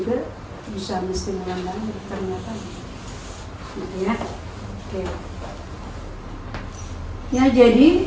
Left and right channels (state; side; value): identical; both; correlation 1.00